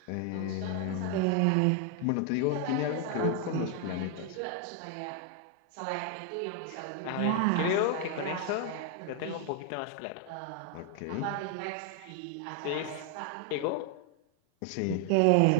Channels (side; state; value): both; different; correlation 0.00